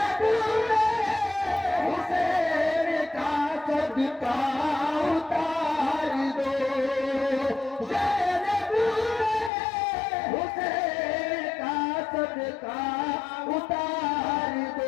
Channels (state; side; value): drops out; right; at 9.5 s